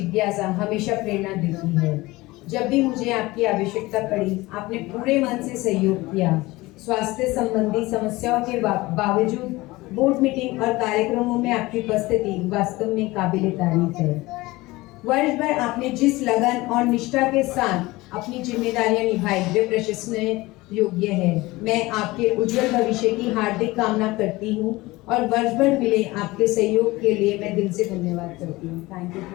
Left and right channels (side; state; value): right; quieter; 20.4 dB